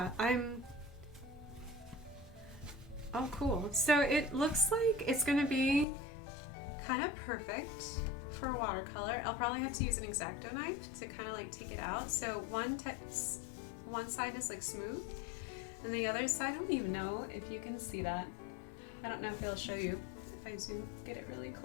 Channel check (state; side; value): drops out; right; at 5.9 s